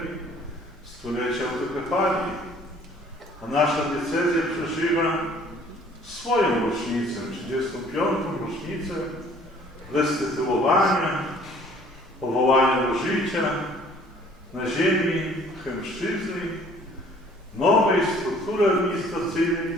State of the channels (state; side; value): normal; both; correlation 0.55